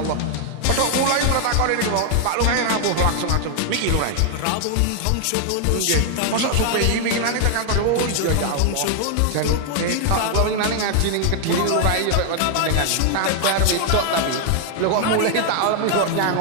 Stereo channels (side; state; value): both; different; correlation 0.00